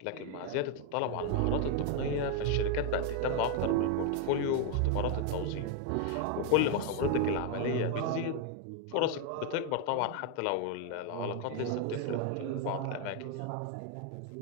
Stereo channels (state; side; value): different; both; correlation 0.01